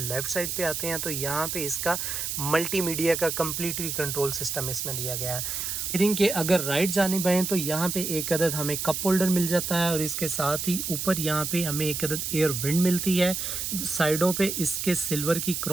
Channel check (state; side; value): noise; right; hiss, 3 dB below the sound